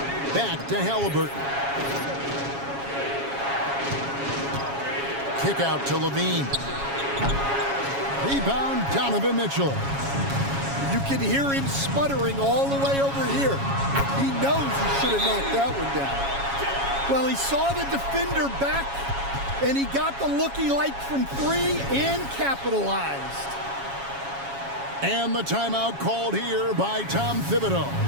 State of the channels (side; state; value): left; late; 7.3 ms